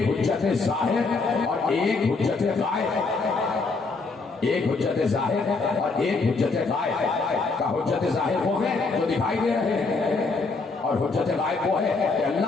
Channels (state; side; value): quieter; right; 4.0 dB